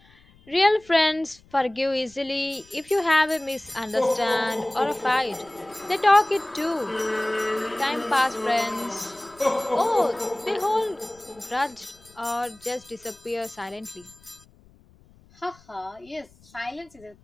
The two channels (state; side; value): noise; left; rumble, 28 dB below the sound